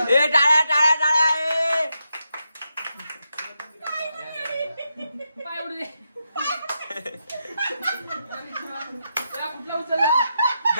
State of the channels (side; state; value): both; inverted; correlation -0.85